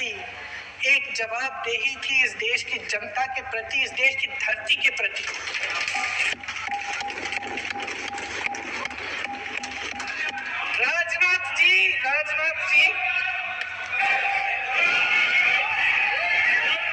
एक जवाबदेही थी इस देश की जनता के प्रति, इस देश की धरती के प्रति। राजनाथ जी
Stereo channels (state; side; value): identical; both; correlation 1.00